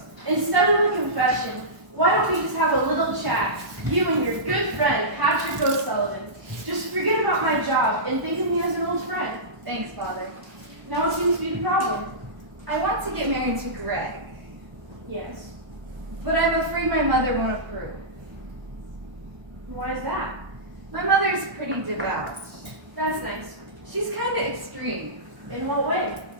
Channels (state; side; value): late; left; 1.0 ms